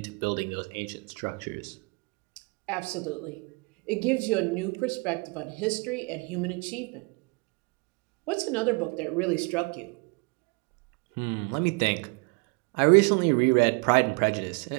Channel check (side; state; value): left; quieter; 31.4 dB